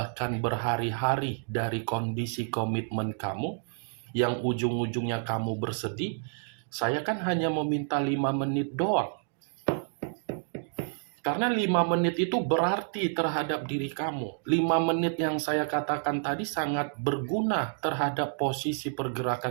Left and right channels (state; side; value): silent; left; digital silence